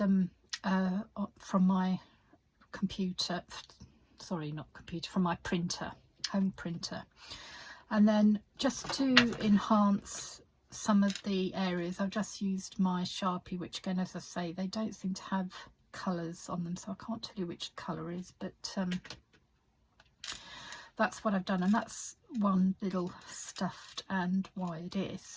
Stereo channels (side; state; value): both; identical; correlation 1.00